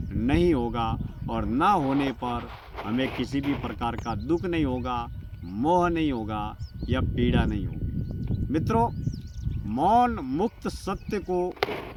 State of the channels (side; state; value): both; identical; correlation 1.00